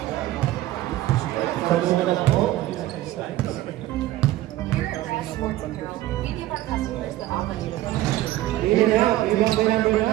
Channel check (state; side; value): quieter; left; 15.5 dB